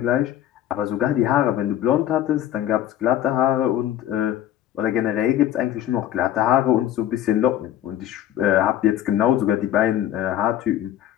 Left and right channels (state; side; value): quieter; right; 11.9 dB